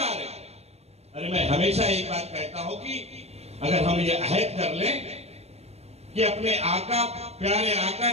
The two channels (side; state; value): left; late; 0.31 ms